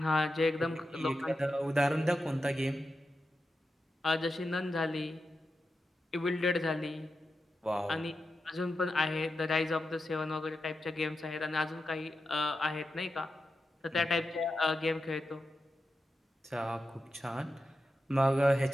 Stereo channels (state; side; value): normal; both; correlation 0.90